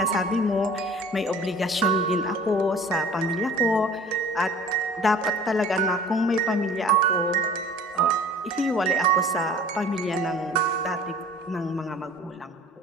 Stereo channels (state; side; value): normal; both; correlation 0.46